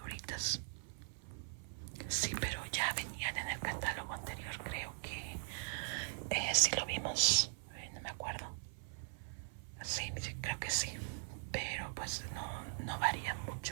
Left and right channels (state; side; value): silent; left; 50 dB below the other